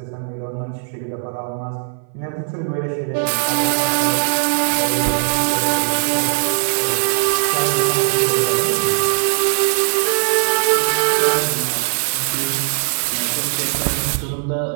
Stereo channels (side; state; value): left; silent; 59 dB below the other